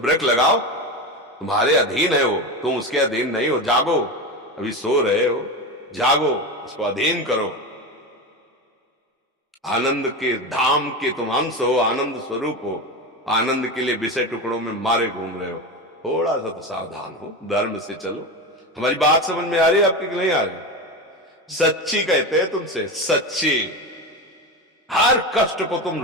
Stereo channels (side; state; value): both; normal; correlation 0.21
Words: लगाओ, तुम्हारे अधीन है वो, तुम उसके अधीन नहीं हो। जागो, अभी सो रहे हो, जागो, उसको अधीन करो। आनंद के धाम के तुम अंश हो, आनंद स्वरूप हो। आनंद के लिए विषय टुकड़ों में मारे घूम रहे हो। थोड़ा सा तो सावधान हो, धर्म से चलो। हमारी बात समझ में आ रही है आपकी कि नहीं आ रही? सच्ची कहते हैं तुमसे, सच्ची। हर कष्ट को